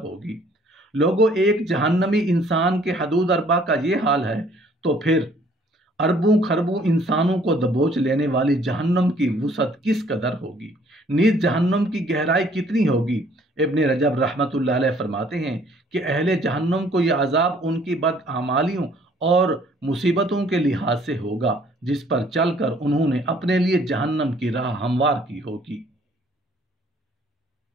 ہوگی۔ لوگوں، ایک جہنمی انسان کے حدود اربع کا یہ حال ہے تو پھر اربوں خربوں انسانوں کو دبوچ لینے والی جہنم کی وسعت کس قدر ہوگی، نیز جہنم کی گہرائی کتنی ہوگی؟ ابن رجب رحمۃ اللہ علیہ فرماتے ہیں کہ اہل جہنم کو یہ عذاب ان کی بدعمالیوں اور مصیبتوں کے لحاظ سے ہوگا جس پر چل کر انہوں نے اپنے لیے جہنم کی راہ ہموار کی ہوگی۔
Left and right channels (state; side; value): normal; both; correlation 0.59